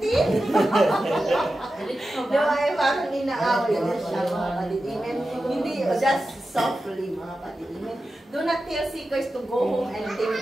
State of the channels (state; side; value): normal; both; correlation 0.92